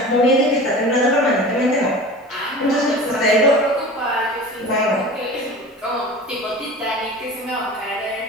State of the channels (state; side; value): normal; both; correlation 0.36